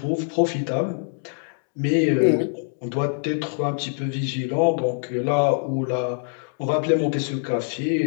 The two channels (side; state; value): right; silent; digital silence